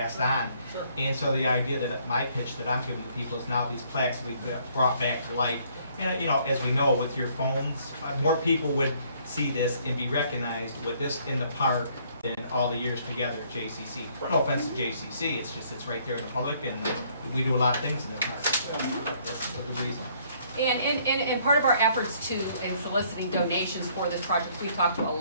on. Sure. And so the idea that my pitch that I'm giving to people is now these plaques will be brought back to life. And, you know, as we know, with your phones, more people would see this and be recognized with this in the park than all the years together at JCC. No offense to JCC, it's just, it's right there in the public, and we do a lot of things in the park. That's the reason. And part of our efforts too, in soliciting donations for this project, we've talked to a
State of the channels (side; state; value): both; inverted; correlation -0.64